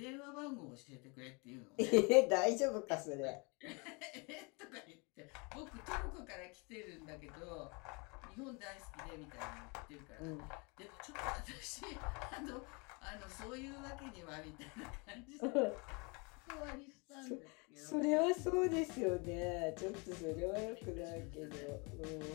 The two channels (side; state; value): right; quieter; 30.8 dB